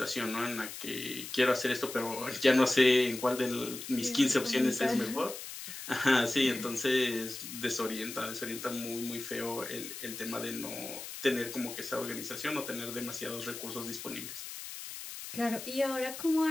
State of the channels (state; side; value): noise; left; hiss, 10 dB below the sound